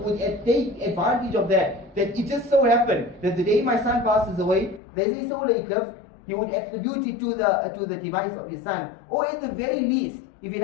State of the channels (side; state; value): right; drops out; at 4.8 s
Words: would take advantage of that it just so happened that the day my son passes away, there is a solar eclipse, he would attribute it to the demise of his son. Or at the very least, if he